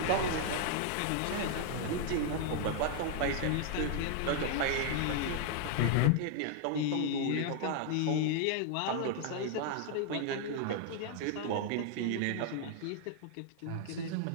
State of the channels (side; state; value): both; different; correlation 0.00